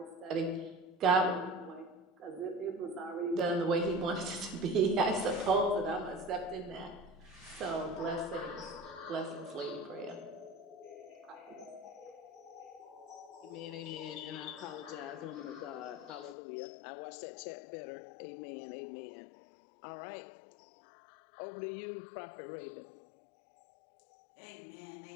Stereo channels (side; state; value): right; drops out; at 16.4 s